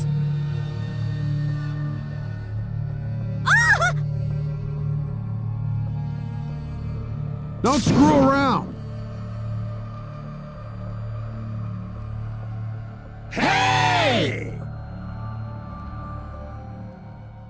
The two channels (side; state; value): both; identical; correlation 1.00